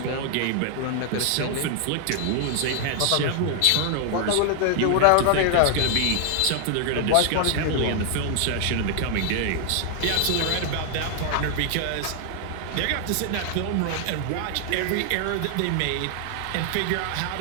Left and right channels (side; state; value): both; different; correlation 0.00